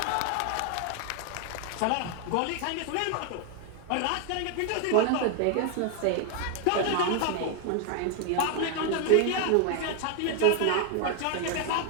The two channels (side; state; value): both; different; correlation 0.01